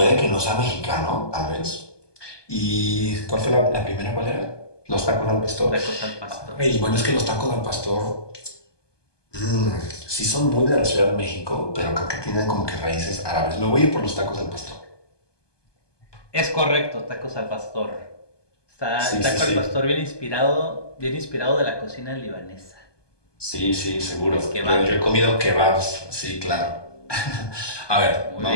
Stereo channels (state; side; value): late; right; 1.2 ms